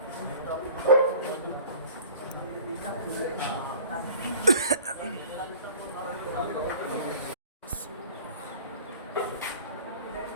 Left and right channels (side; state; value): both; inverted; correlation -0.43